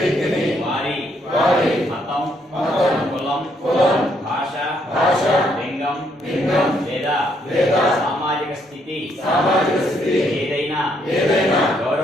వారి మతం, కులం, భాష, లింగం లేదా సామాజిక స్థితి ఏదైనా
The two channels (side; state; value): both; normal; correlation 0.72